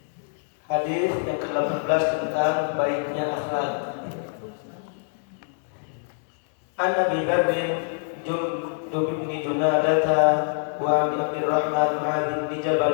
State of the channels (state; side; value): silent; right; digital silence